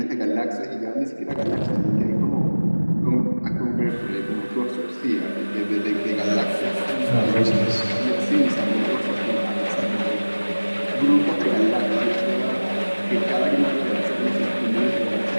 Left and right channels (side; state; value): both; inverted; correlation -1.00